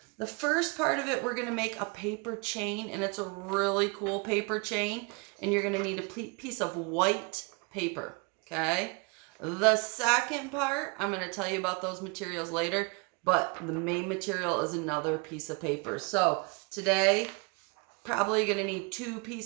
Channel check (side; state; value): left; quieter; 30.6 dB